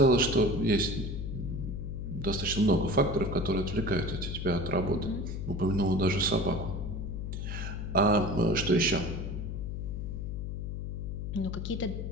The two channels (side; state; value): left; noise; hum, 4 dB below the sound